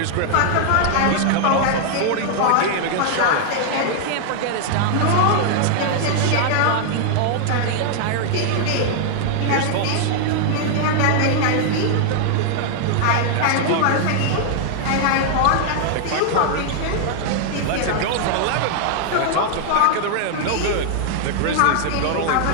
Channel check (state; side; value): different; both; correlation -0.01